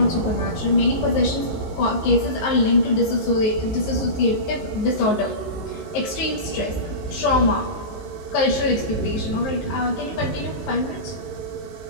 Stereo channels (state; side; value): late; right; 19 ms